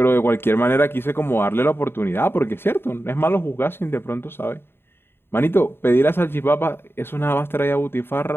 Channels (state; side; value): late; right; 0.11 ms